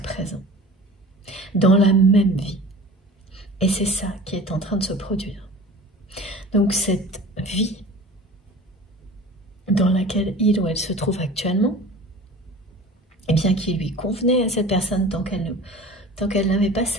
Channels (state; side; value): normal; both; correlation 0.40